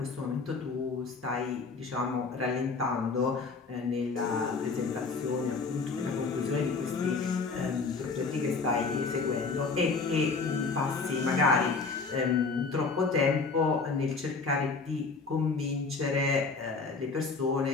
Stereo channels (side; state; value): right; quieter; 4.3 dB